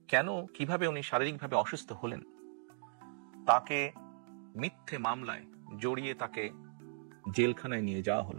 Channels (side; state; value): left; silent; digital silence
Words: কেন, কিভাবে উনি শারীরিকভাবে অসুস্থ হলেন, তাকে মিথ্যে মামলায় জড়িয়ে তাকে জেলখানায় নিয়ে যাওয়া